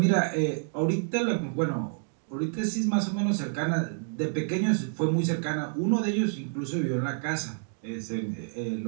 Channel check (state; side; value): silent; left; 59 dB below the other